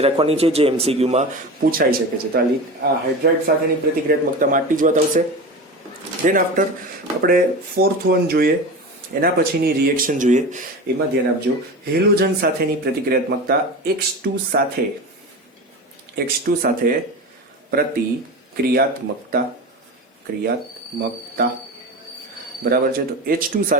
રાખવાની છે, જે MCQમાં પૂછાઈ શકે છે. તો આ હાઇડ્રાઇડ સાથેની પ્રતિક્રિયાત્મકતામાં આટલી જ વાત આવશે. ધેન આફ્ટર આપણે 4th વન જોઈએ, એના પછીની રિએક્શન જોઈએ. એમાં ધ્યાન આપજો, હેલોજન સાથેની પ્રતિક્રિયાત્મકતા. X2 સાથે પ્રતિક્રિયાત્મકતા. બરાબર છે, તો H2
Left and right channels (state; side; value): normal; both; correlation 0.28